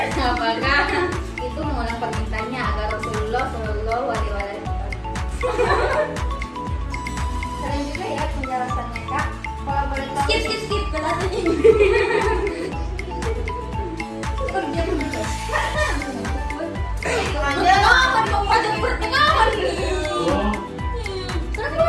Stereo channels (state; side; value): identical; both; correlation 1.00